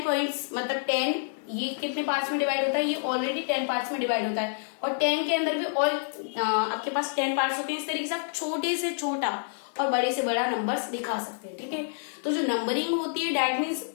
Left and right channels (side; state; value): right; silent; digital silence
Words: पॉइंट्स मतलब 10, ये कितने पार्ट्स में डिवाइड होता है, ये ऑलरेडी 10 पार्ट्स में डिवाइड होता है. और 10 के अंदर भी और आपके पास 10 पार्ट्स होते हैं. इस तरीके से आप छोटे से छोटा और बड़े से बड़ा नंबर्स दिखा सकते हैं. ठीक है. तो जो नंबरिंग होती है दैट मीन्स